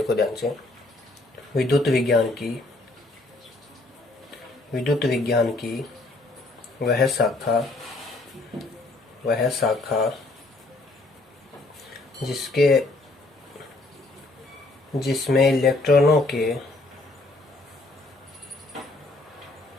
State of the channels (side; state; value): right; quieter; 3.0 dB